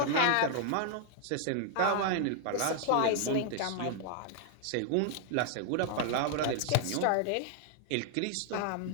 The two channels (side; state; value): both; different; correlation 0.00